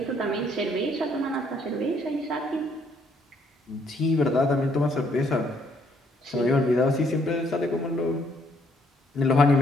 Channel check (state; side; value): normal; both; correlation 0.68